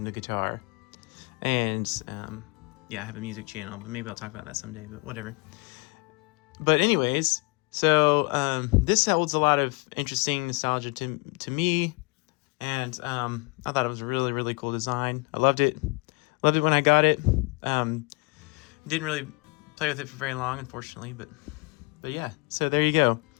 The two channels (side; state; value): right; quieter; 28.3 dB